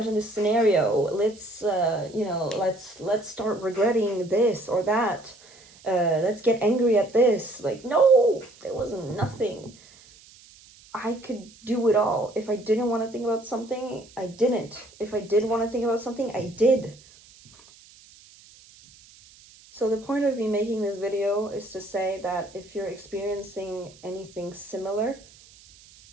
Let's you know, let's start regretting this or that. Let's get angry at this. Like, no, there was nothing. I could do it all. If I didn't want to think about something, I didn't. If I did want to think about something, I did. So the point of me making this video is to say that if you're experiencing anything similar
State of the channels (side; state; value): right; noise; hiss, 24 dB below the sound